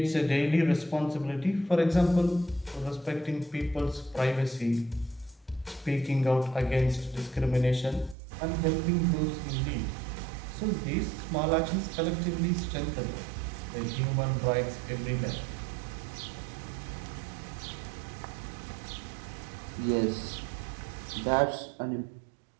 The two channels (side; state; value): left; drops out; at 8.2 s